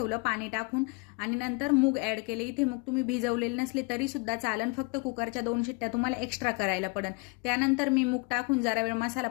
पाणी टाकून आणि नंतर मूग ॲड केले. इथे मूग तुम्ही भिजवलेले नसले तरी सुद्धा चालन, फक्त कुकरच्या 2 शिट्ट्या तुम्हाला एक्स्ट्रा करायला पडेल. त्यानंतर मी मूग टाकून जरा वेळ मसाला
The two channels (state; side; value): quieter; right; 28.8 dB